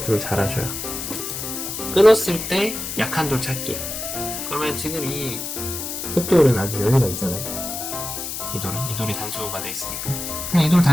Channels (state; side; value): noise; left; hiss, 5 dB below the sound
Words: 잘 하셔야. 끊었을 때 약한 돌 찾기. 그러면 지금 이 흑돌은 아주 여유가 있잖아요. 이 돌이 단수가 돼 있으니까 그냥 이 돌